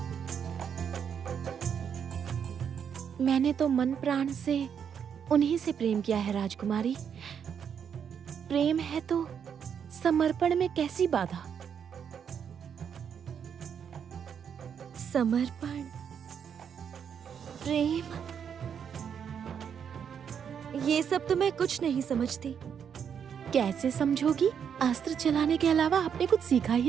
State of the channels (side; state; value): left; quieter; 7.7 dB